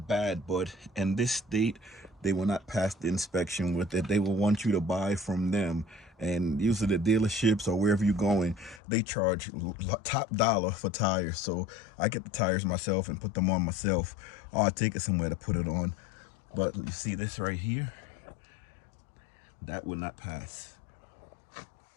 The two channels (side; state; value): right; drops out; at 8.8 s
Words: bad, but in this state, they will not pass the inspection with it. They will want you to buy from them. And usually the dealerships or wherever you're going, they charge top dollar for tires. So I get the tires myself and put them on myself. Or I take it somewhere to put it on. But you see this right here? That will not pass.